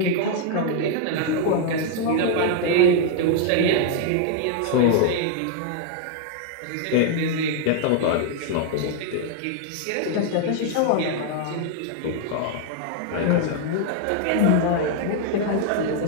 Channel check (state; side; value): different; both; correlation 0.00